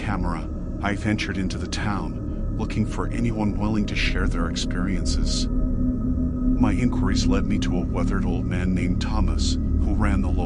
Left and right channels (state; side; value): identical; both; correlation 1.00